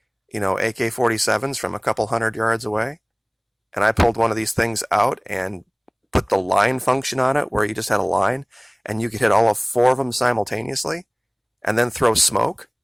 AK-47s from a couple hundred yards away, and I pulled one of these things out and put the line function on it where you just had a line and you could hit all of 4 of them simultaneously and then throw smoke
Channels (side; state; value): both; identical; correlation 1.00